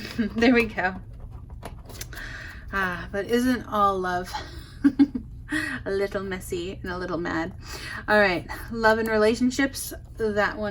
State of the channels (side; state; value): both; identical; correlation 1.00